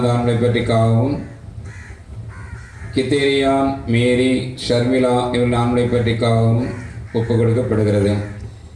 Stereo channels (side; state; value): both; identical; correlation 1.00